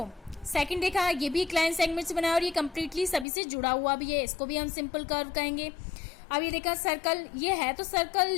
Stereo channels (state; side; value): drops out; right; at 3.2 s